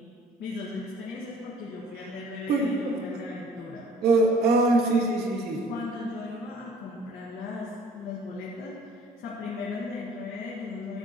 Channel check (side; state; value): both; normal; correlation 0.53